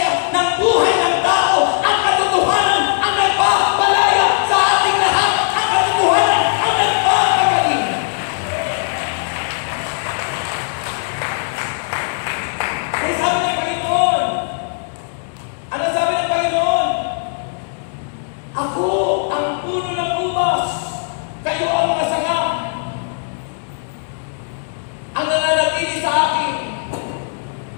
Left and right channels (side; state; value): right; silent; 67 dB below the other